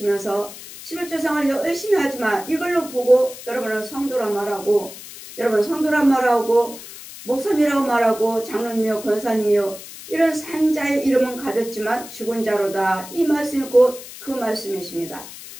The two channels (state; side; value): noise; left; hiss, 14 dB below the sound